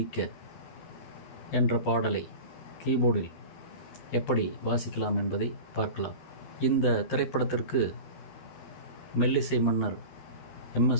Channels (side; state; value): right; late; 12 ms